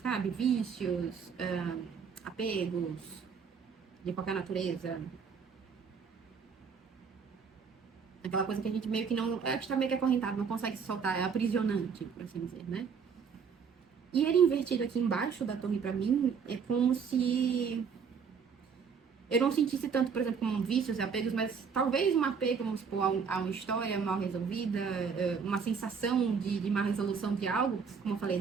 Vícios, apegos, de qualquer natureza. Aquela coisa que a gente meio que não... A gente tá meio que acorrentado, não consegue se soltar, é aprisionante, por assim dizer, né? E ele invertido aqui embaixo da torre pra mim, é como se eu não sentisse tanto, por exemplo, como vícios e apegos, mas talvez um apego, vamos supor, a uma história mal resolvida, uma sensação de má resolução de algo, como eu falei,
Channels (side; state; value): left; quieter; 6.2 dB